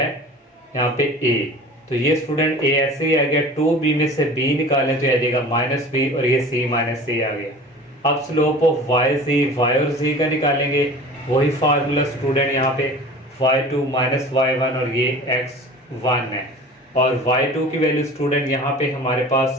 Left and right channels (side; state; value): both; normal; correlation 0.41